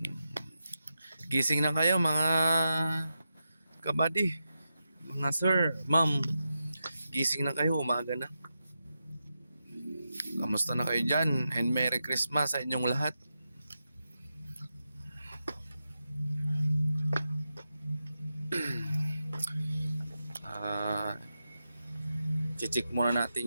Gising na kayo mga kabady. Mga sir, ma'am. Gising na kayo, umaga na. Kamusta na kayo dyan? And Merry Christmas sa inyong lahat. Ah, check muna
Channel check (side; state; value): both; inverted; correlation -0.89